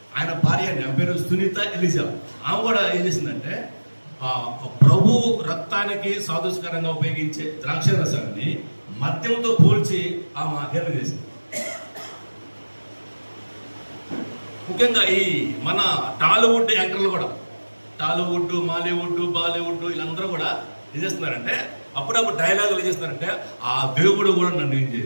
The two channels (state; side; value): inverted; both; correlation -1.00